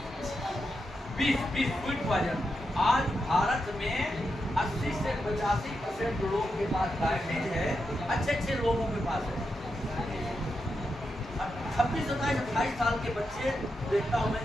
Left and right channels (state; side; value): normal; both; correlation 0.86